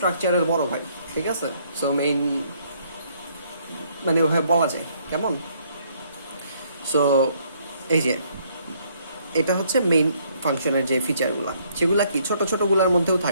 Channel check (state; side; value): inverted; both; correlation -0.67